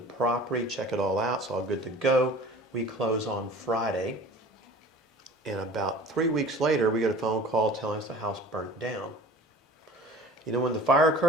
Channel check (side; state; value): both; normal; correlation 0.43